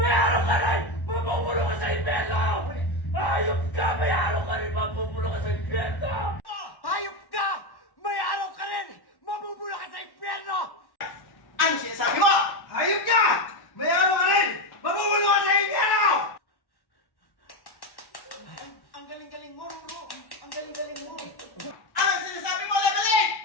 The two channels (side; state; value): right; late; 1.1 ms